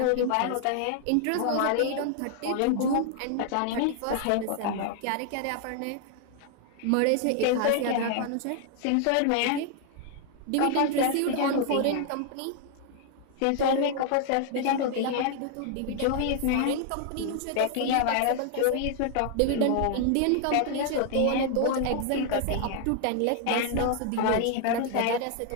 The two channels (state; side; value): different; both; correlation 0.00